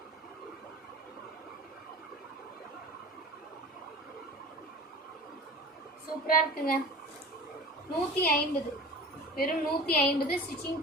சூப்பராக இருக்குங்க. 150. வெறும் 150 ஸ்டிச்சிங்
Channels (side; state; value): both; normal; correlation 0.38